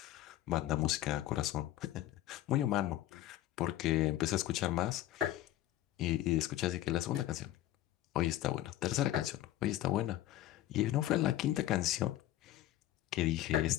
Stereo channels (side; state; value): right; quieter; 14.1 dB